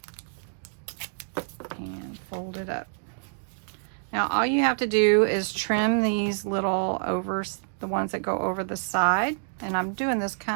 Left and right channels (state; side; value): silent; left; digital silence